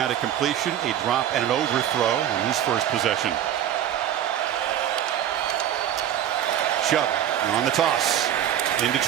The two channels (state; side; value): quieter; left; 10.8 dB